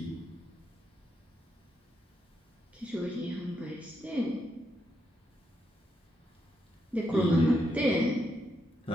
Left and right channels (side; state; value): both; normal; correlation 0.81